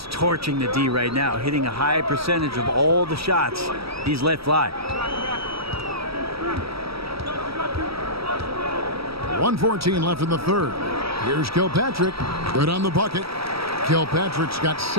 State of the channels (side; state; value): left; late; 0.76 ms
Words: torching the D right now, hitting a high percentage of all the shots he's let fly. 1:14 left in the third. Here's Kilpatrick. Good on the bucket. Kilpatrick's got